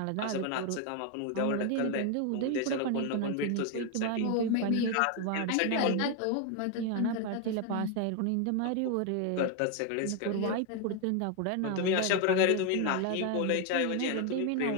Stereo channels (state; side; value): different; both; correlation 0.01